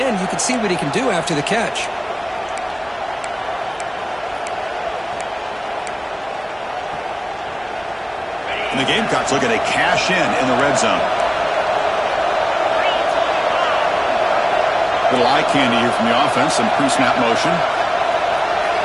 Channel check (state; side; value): identical; both; correlation 1.00